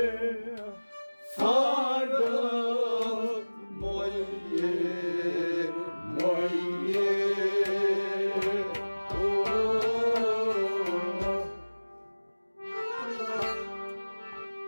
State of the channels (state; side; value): inverted; both; correlation -1.00